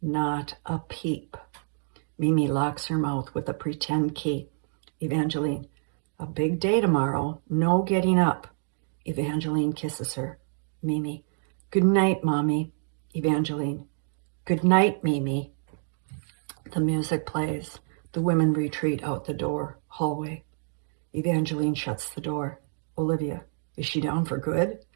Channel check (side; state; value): left; silent; 60 dB below the other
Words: a peep. Mimi locks her mouth with a pretend key. Evangeline, a big day tomorrow, no getting up. Evangeline kisses her. Mimi, good night, Mommy. Evangeline, good night, Mimi. The music plays. The women retreat out the door, hallway. Evangeline shuts the door. Olivia, is she down for good?